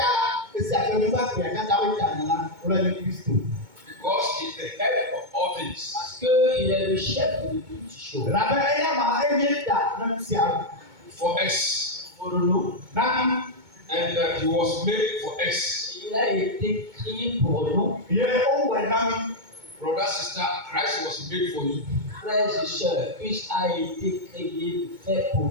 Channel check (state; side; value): late; left; 2.2 ms